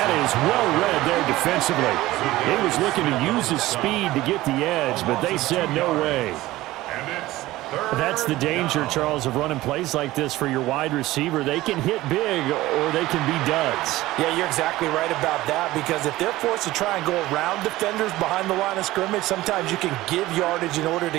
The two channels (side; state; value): left; quieter; 17.2 dB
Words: is well read there defensively. He was looking to use his speed to get the edge, but they said no way. That's the danger, Charles, of running plays like this for your wide receiver. They can hit big or they can be duds. Yeah, you're exactly right about that, because if they're forced to try and go around defenders behind the line of scrimmage, sometimes you can give yardage in order